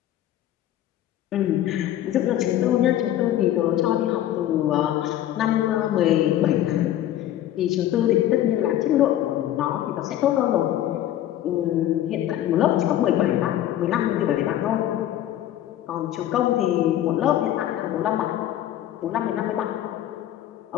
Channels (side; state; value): right; quieter; 12.5 dB